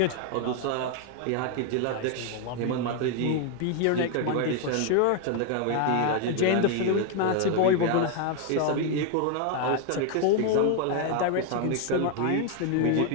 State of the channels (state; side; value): different; both; correlation 0.01